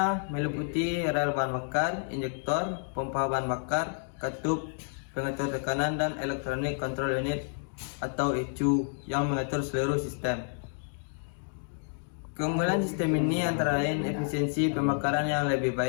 meliputi rel bahan bakar, injektor, pompa bahan bakar, katup, pengatur tekanan, dan electronic control unit atau ECU yang mengatur seluruh sistem. Keunggulan sistem ini antara lain efisiensi pembakaran yang lebih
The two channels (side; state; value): right; silent; 58 dB below the other